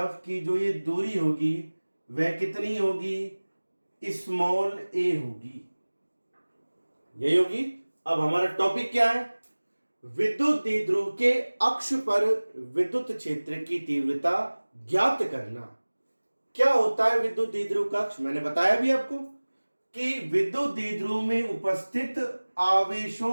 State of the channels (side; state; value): both; inverted; correlation -1.00